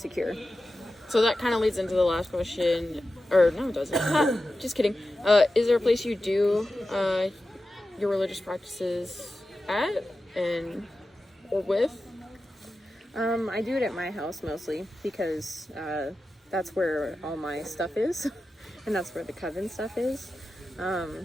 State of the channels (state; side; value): normal; both; correlation 0.92